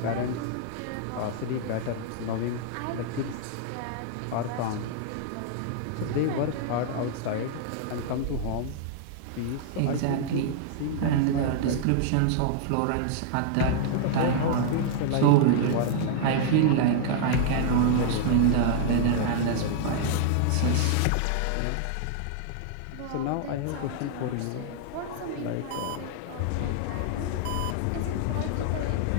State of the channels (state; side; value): different; both; correlation -0.01